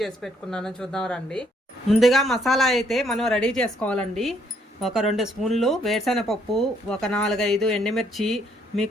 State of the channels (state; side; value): normal; both; correlation 0.69